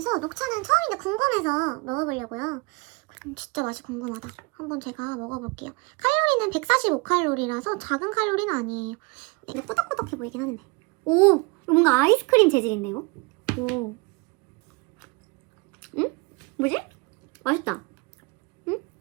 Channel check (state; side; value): quieter; left; 28.0 dB